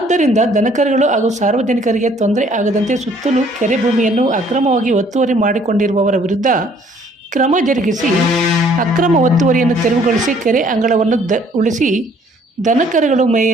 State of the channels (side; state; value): both; normal; correlation 0.60